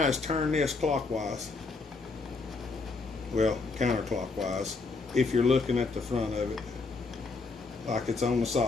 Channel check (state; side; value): quieter; right; 4.0 dB